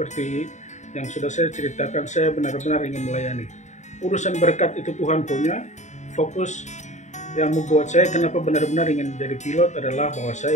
yang sudah saya ceritakan, saya benar-benar ingin melayani. Urusan berkat itu Tuhan punya. Fokus yang membuat saya kenapa benar-benar ingin menjadi pilot adalah bahwa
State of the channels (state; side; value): late; right; 0.34 ms